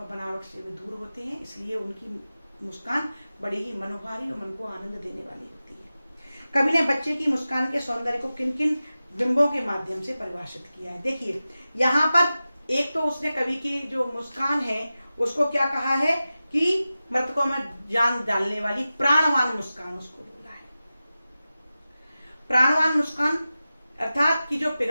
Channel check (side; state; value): both; inverted; correlation -0.94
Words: बनावट से भी दूर होते हैं, इसलिए उनकी मुस्कान बड़ी ही मनोहारी और मन को आनंद देने वाली होती है। कवि ने बच्चे की मुस्कान के सौंदर्य को किन किन बिंबों के माध्यम से परिभाषित किया है। देखिए यहाँ पर एक तो उसने कवि की जो मुस्कान है उसको क्या कहा है कि मृतकों में जान डालने वाली प्राणवान मुस्कान उसको बोला है। प्राणवान मुस्कान अर्थात कि जो